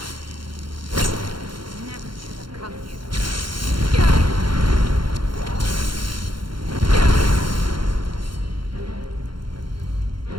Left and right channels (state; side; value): late; left; 0.73 ms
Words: Never should have come here.